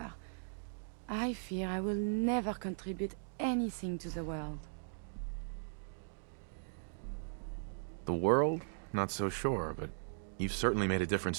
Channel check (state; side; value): silent; left; digital silence